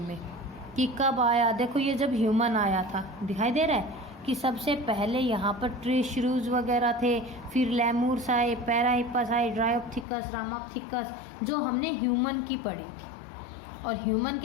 में, कि कब आया। देखो ये जब ह्यूमन आया था, दिखाई दे रहा है कि सबसे पहले यहाँ पर ट्री श्रूज वगैरह थे, फिर लेमूर्स आए, पैराहिपस आए, ड्रायोप्थिकस, रामाप्थिकस, जो हमने ह्यूमन की पढ़ी थी। और ह्यूमन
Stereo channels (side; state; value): right; drops out; at 10.1 s